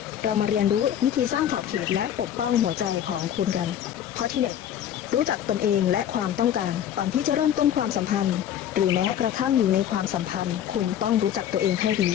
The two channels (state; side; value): quieter; right; 10.3 dB